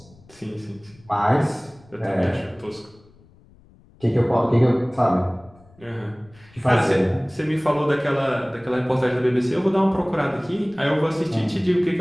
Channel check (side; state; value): left; noise; rumble, 27 dB below the sound